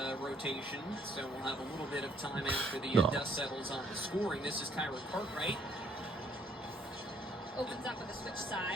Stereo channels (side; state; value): both; normal; correlation 0.65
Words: rotation, so we'll have a little bit of time after the dust settles on the scoring. This is Kyra Cartwright. Opens up with a switch